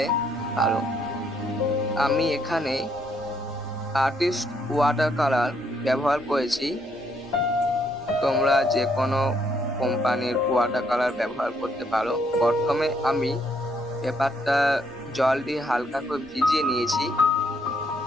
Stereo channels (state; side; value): normal; both; correlation 0.72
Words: পারো। আমি এখানে আর্টিস্ট ওয়াটার কালার ব্যবহার করেছি। তোমরা যে কোনো কোম্পানির ওয়াটার কালার ব্যবহার করতে পারো। প্রথমে আমি পেপারটা জল দিয়ে হালকা করে ভিজিয়ে নিয়েছি।